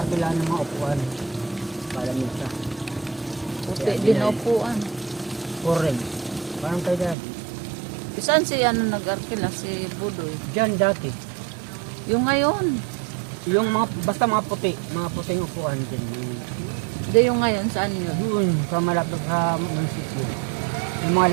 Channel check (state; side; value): drops out; left; at 7.2 s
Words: ng mga upuan. Palamig siya. Puti din na upuan. Orange. Parang kay daddy. Saan si ano nag-arkila? Si Budoy. Diyan dati. Yung ngayon. Yung mga, basta mga puting upuan dyan. Hindi yung ngayon. Saan yun? Doon, sa malapit sa munisipyo. Yung